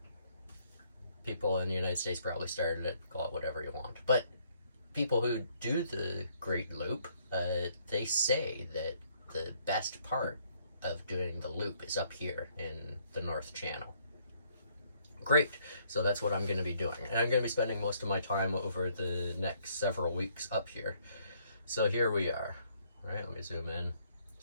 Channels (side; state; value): both; inverted; correlation -0.67